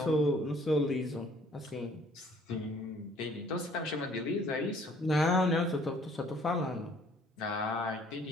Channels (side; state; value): both; normal; correlation 0.58